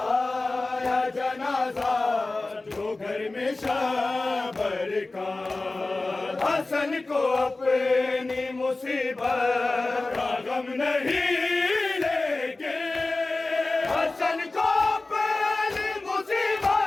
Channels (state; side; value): quieter; right; 3.2 dB